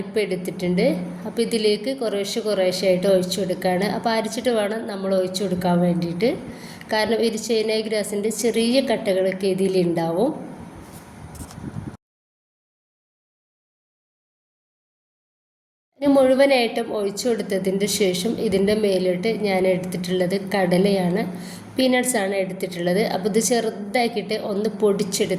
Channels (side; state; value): both; identical; correlation 1.00